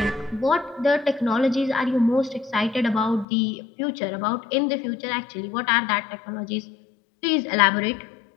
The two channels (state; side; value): drops out; right; at 3.2 s